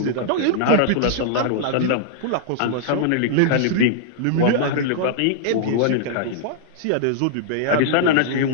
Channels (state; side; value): different; both; correlation -0.01